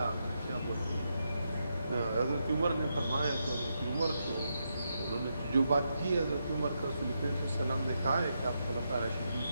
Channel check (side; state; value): both; inverted; correlation -0.83